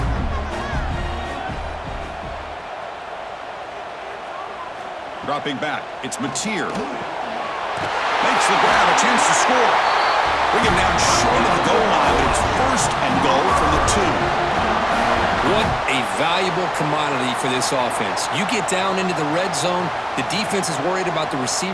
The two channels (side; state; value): both; identical; correlation 1.00